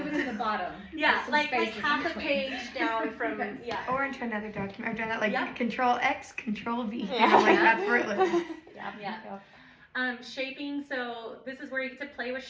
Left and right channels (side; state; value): both; identical; correlation 1.00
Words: it to the bottom. yeah, Some like spaces in half a between. page down from yeah. Or into another document. I've done that like Yeah. Control X, Control V. Yeah. Like that's where it lives. Yeah. Shaping, so this is where you get to play with